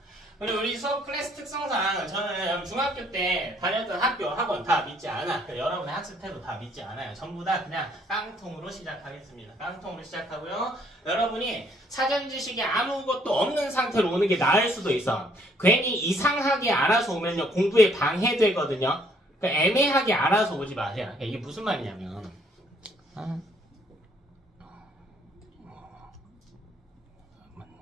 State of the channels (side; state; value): both; normal; correlation 0.64